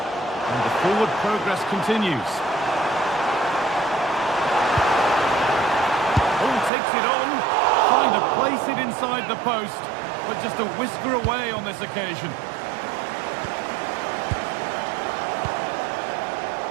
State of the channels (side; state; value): left; drops out; at 6.7 s